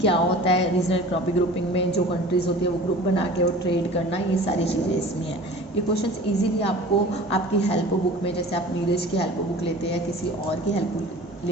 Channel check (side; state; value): both; normal; correlation 0.42